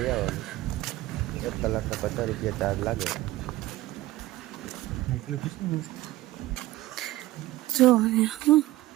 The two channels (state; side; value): quieter; left; 17.2 dB